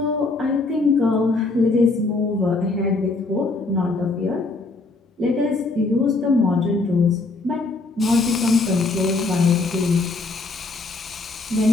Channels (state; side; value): quieter; right; 3.5 dB